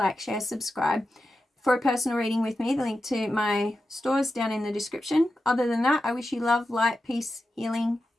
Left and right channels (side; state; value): both; normal; correlation 0.90